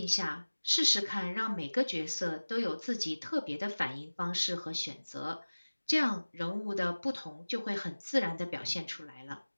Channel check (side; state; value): both; inverted; correlation -1.00